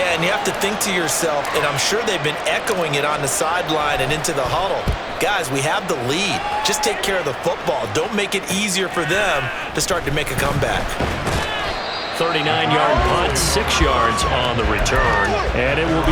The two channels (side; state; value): both; identical; correlation 1.00